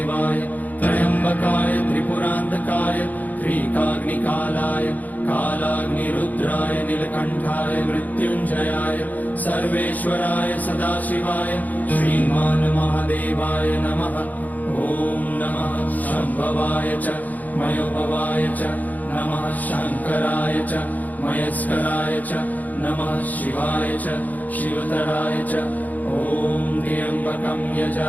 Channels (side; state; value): right; late; 0.080 ms